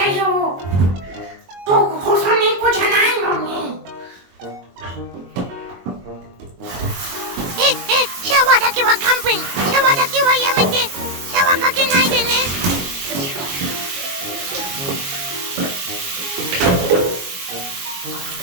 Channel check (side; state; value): left; late; 22 ms